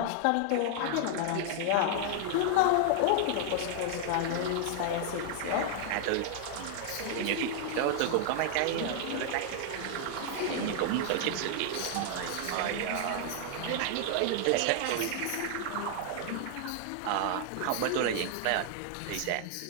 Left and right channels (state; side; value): different; both; correlation 0.00